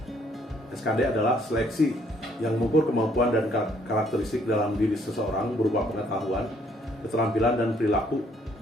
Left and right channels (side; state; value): both; normal; correlation 0.65